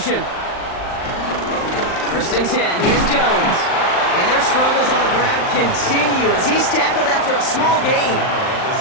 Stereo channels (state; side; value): late; right; 39 ms